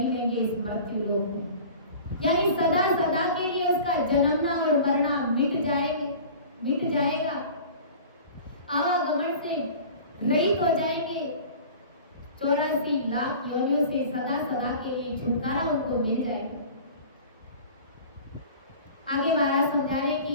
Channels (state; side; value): inverted; both; correlation -0.41